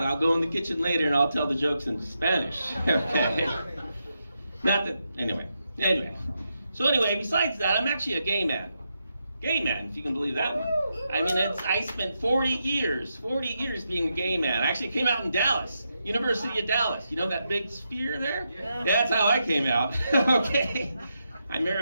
I'll go in the kitchen later and I'll tell the jokes in Spanish, okay? Not that, anyway. So anyway, besides that, I'm actually a gay man. Gay man, if you can believe that one. I mean, I spent 40 years being a gay man. I actually came out in Dallas, University of Dallas. You know that big sphere there? Yeah. That's how I came out, okay? I remember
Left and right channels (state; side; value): inverted; both; correlation -0.84